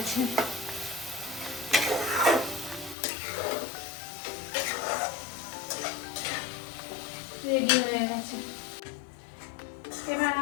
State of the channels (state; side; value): drops out; right; at 3.0 s